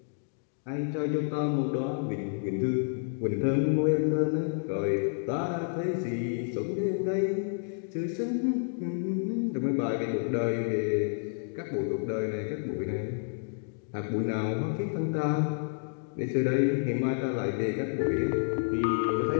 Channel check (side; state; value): right; silent; digital silence